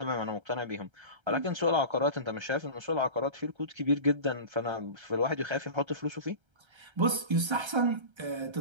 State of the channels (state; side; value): late; left; 1.3 ms